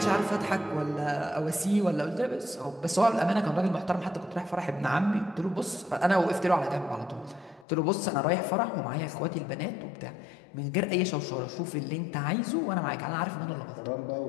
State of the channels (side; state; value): right; drops out; at 7.7 s